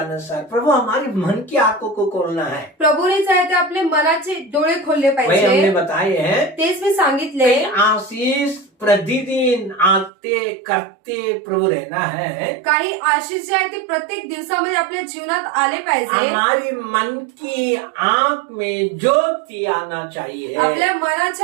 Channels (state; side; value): drops out; left; at 10.1 s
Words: प्रभु हमारे मन की आंखों को खोलना है. प्रभूने आहे ते आपले मनाचे डोळे खोलले वही हमने पाहिजे. बताए हैं. तेच मी सांगितले. आशीष प्रतिदिन आते करते प्रभु रहना है. काही आशीष जे आहे ते प्रत्येक दिवसामध्ये आपल्या जीवनात आले पाहिजे. हमारी मन की आंख में ज्योति आना चाहिए. आपल्या